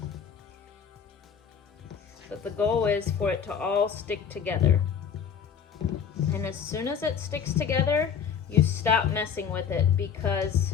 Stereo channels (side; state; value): right; quieter; 7.3 dB